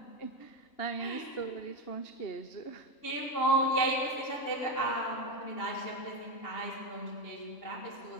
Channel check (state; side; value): late; right; 2.8 ms